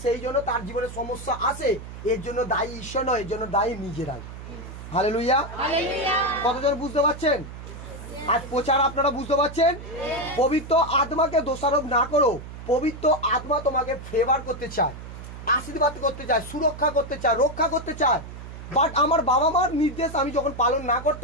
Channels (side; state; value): right; noise; hum, 12 dB below the sound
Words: সেই জন্য তার জীবনে সমস্যা আসে। এর জন্য দায়ী ঈশ্বর নয়, এর জন্য দায়ী নিজেরাই। হালেলুয়া। কতজন বুঝতে পারছেন? আজ প্রচার আপনারা বুঝতে পারছেন? পবিত্র আত্মাকে দোষারোপ না করো। পবিত্র আত্মা তোমাকে ফেভার করতে চায়, আশীর্বাদ করতে চায়, সুরক্ষা করতে চায়, রক্ষা করতে চায়। বাট আমার বাবা মার নির্দেশ আমি যখন পালন না